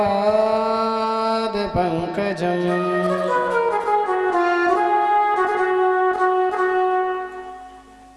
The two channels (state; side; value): identical; both; correlation 1.00